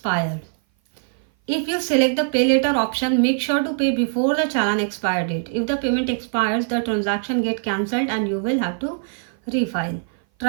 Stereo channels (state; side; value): silent; left; 57 dB below the other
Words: If you select the pay later option, make sure to pay before the challan expire date. If the payment expires, the transaction get cancelled and you will have to refile.